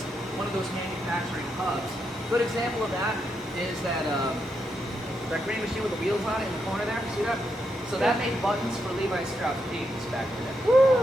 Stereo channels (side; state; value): both; normal; correlation 0.82